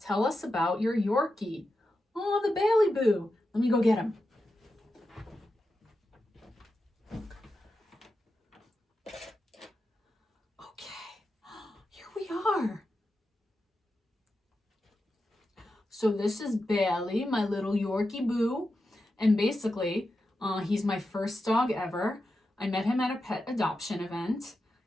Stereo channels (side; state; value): both; normal; correlation 0.89